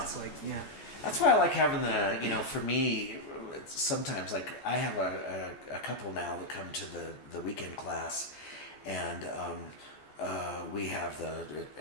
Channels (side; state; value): right; late; 14 ms